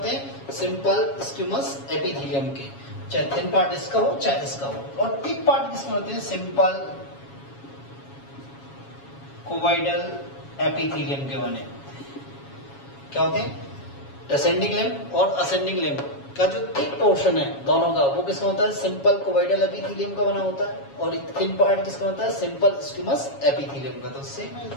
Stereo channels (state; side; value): late; right; 7.2 ms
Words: हैं, सिंपल स्क्यूमस एपिथेलियम के। चाहे थिन पार्ट इसका हो चाहे इसका हो। और थिक पार्ट किसके होते हैं, सिंपल कोवाइडल एपिथेलियम के बने होते हैं। क्या होते हैं, डिसेंडिंग लिम्ब और असेंडिंग लिम्ब का जो थिक पोर्शन है दोनों का, वो किसका होता है, सिंपल कोवाइडल एपिथेलियम का बना होता है। और थिन पार्ट किसका होता है, सिंपल स्क्यूमस एपिथेलियम का। तो सेम है।